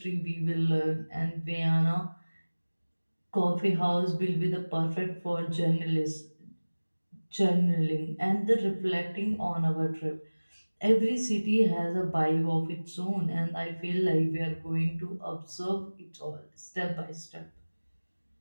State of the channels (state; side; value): inverted; both; correlation -1.00